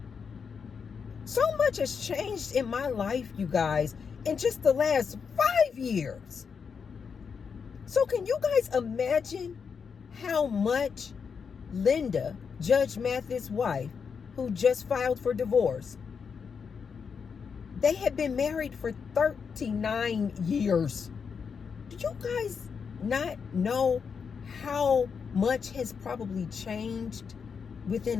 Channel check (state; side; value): quieter; right; 6.1 dB